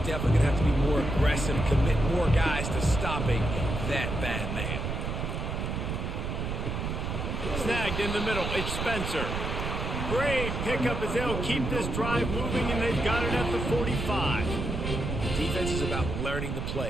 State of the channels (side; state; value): right; noise; rumble, 3 dB below the sound